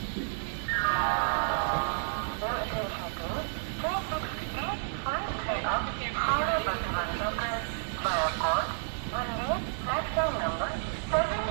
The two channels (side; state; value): left; silent; 57 dB below the other